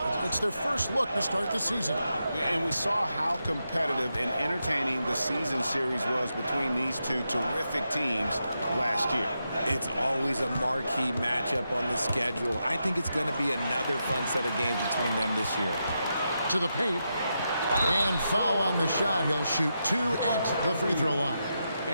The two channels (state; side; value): inverted; both; correlation -0.86